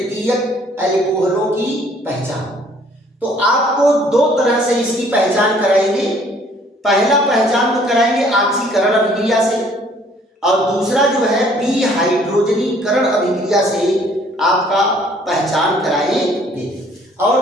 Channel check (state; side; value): normal; both; correlation 0.59